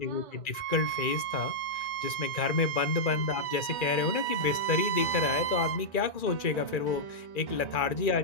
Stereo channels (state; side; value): late; right; 2.4 ms